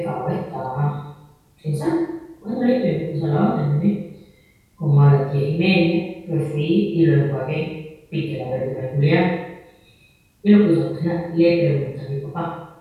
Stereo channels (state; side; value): identical; both; correlation 1.00